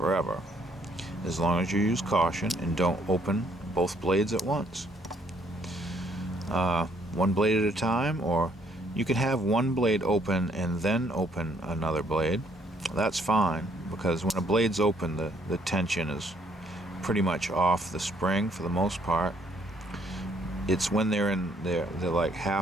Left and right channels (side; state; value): both; normal; correlation 0.67